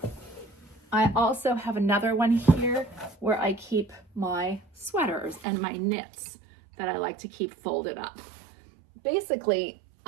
I also have another one here where I keep my sweaters and my knits that I like to keep folded up. Basically,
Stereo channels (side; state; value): left; drops out; at 5.5 s